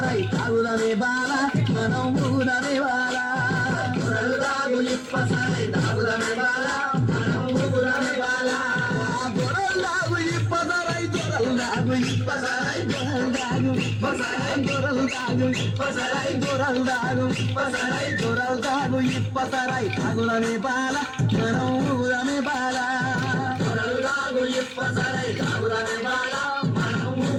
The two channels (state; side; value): identical; both; correlation 1.00